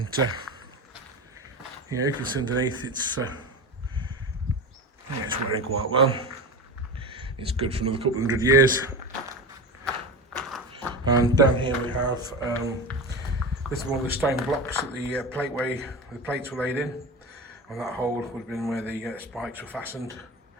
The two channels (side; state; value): both; normal; correlation 0.26